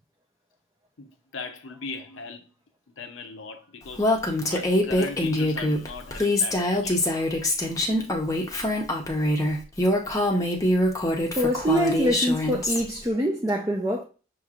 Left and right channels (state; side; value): normal; both; correlation 0.57